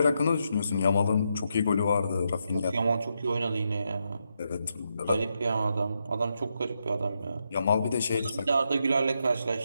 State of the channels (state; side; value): inverted; both; correlation -0.82